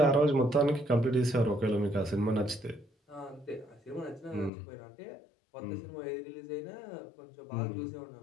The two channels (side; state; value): right; drops out; at 4.5 s